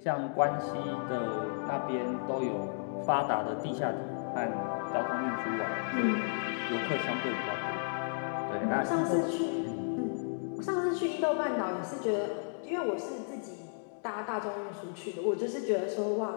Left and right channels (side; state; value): right; silent; digital silence